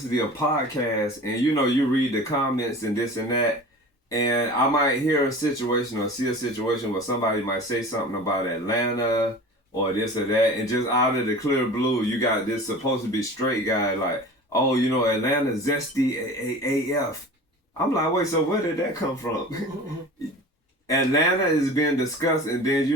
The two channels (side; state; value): both; normal; correlation 0.38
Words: of podcasts, and you know, you read the comments and this and that, and I might hear a situation or see a situation where somebody might say something about Atlanta or this or that, and just out of the clear blue, you got this supposed to be straight guy like, oh, you know, Atlanta zesty AF. I'm like, wait, so where did that come from? Atlanta is being discussed, and then,